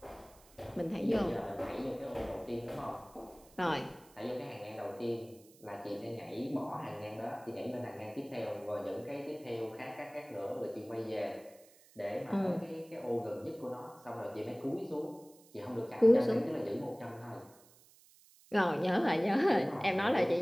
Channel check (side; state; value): right; noise; hiss, 26 dB below the sound